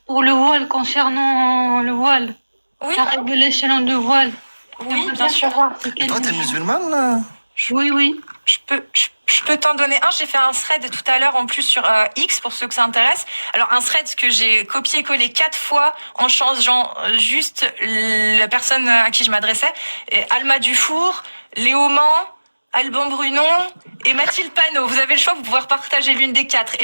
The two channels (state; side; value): inverted; both; correlation -1.00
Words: pour le voile, concernant le voile. Oui, La révélation de voile. oui, J'aimerais bien sûr. savoir c'est Et quel toi, t'es numéro. musulmane là? Oui, oui. Je peux t'en donner un. J'ai fait un thread tout à l'heure en plus sur X pour ceux que ça intéresse. Alors un thread que j'ai copié-collé 4 fois en changeant juste la personne à qui je m'adressais. Et Alma Dufour, Léo Mans, Alban Brunon et Mathilde Panot. Vous avez le choix, vous pouvez partager l'une des 4.